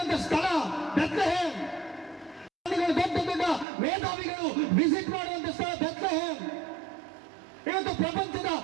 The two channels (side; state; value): left; drops out; at 3.7 s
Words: ಸ್ಥಳ ಬೆತ್ಲೆಹೇಮ್, ದೊಡ್ಡ ದೊಡ್ಡ ಮೇಧಾವಿಗಳು ವಿಸಿಟ್ ಮಾಡುವಂತ ಸ್ಥಳ ಬೆತ್ಲೆಹೇಮ್. ಇವತ್ತು ಪ್ರಪಂಚದ